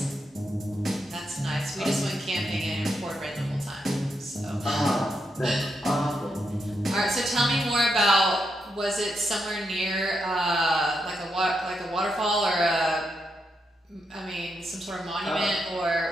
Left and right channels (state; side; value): normal; both; correlation 0.83